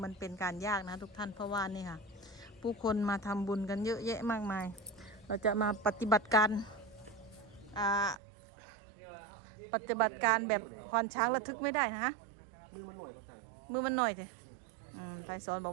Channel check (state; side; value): drops out; left; at 8.2 s